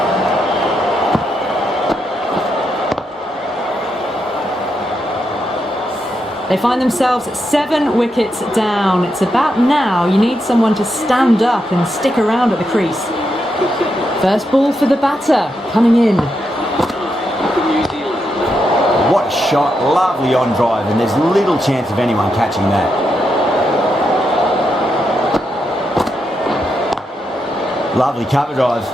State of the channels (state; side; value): normal; both; correlation 0.83